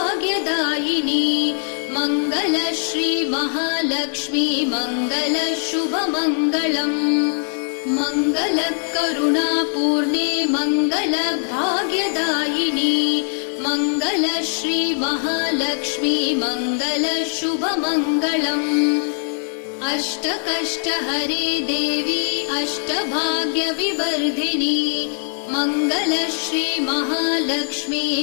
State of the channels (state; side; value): silent; right; 56 dB below the other